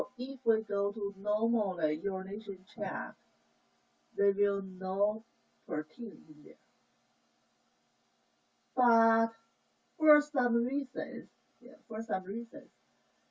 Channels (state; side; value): identical; both; correlation 1.00